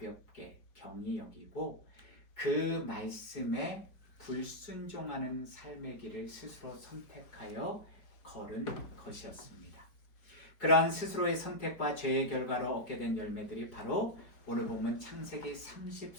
경히 여기고 그 말씀에 불순종하는 삶의 길을 스스로 선택하여 걸은 것이었습니다. 그러한 스스로의 선택과 죄의 결과로 얻게 된 열매들이 바로 오늘 본문 창세기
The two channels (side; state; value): right; late; 4.7 ms